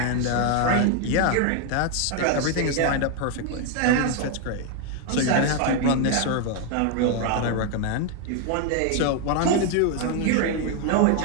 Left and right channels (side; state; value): both; different; correlation 0.01